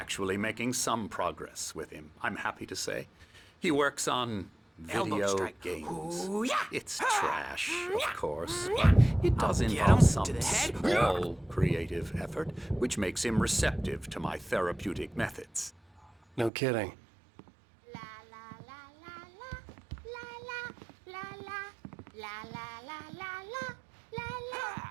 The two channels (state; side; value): drops out; left; at 16.5 s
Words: making some progress with him, I'm happy to say. He works on Elbow video strike. games. Ooh, yeah. It's trash, of course, but it does I'll get involve him some to the head. small creative effort, which makes him receptive to my therapeutic methods. No kidding.